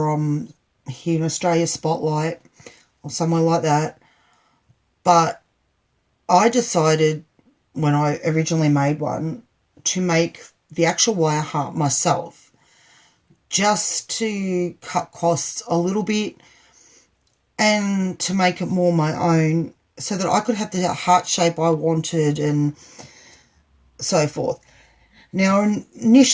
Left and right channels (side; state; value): both; identical; correlation 1.00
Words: here in Australia, Spotlight, or somewhere like that. But I decided when I originally made one to make the actual wire heart myself, just to cut costs a little bit and to make it more my own so that I could have the heart shape I wanted and so forth. Now,